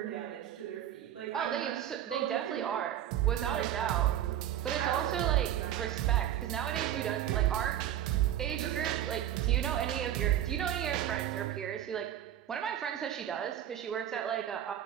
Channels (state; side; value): quieter; left; 11.2 dB